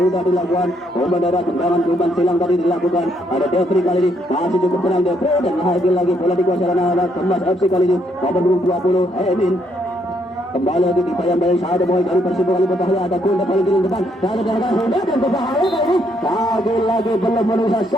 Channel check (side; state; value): both; normal; correlation 0.72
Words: dilakukan. Umpan darat, umpan silang tadi dilakukan. Ada Jeffrey kali ini masih cukup tenang Jeffrey dan lagi-lagi bola dikuasai oleh Kemas FC kali ini nomor 20 Emin. Kembali lagi dibayang-bayang satu boy dari Persibuan kali berbahaya. Ada Kunda paling kiri depan, ada sudah dan berbahaya kali ini. Lagi-lagi belum menusa